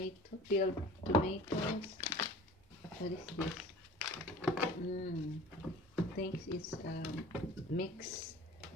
peeled tomatoes. What is this? I think it's mix.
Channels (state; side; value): normal; both; correlation 0.43